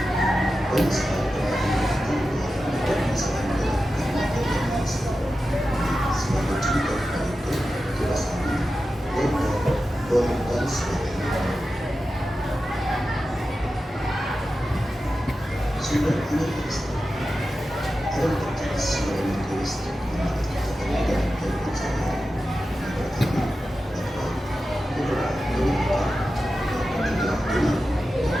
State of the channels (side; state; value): both; normal; correlation 0.92